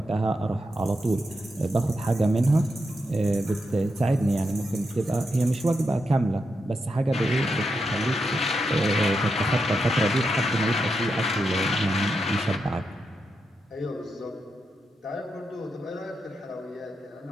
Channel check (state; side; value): normal; both; correlation 0.85